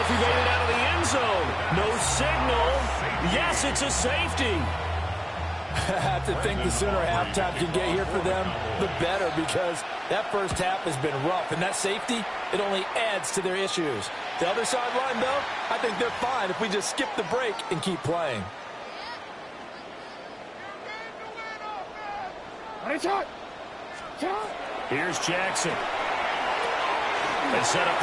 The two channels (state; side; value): identical; both; correlation 1.00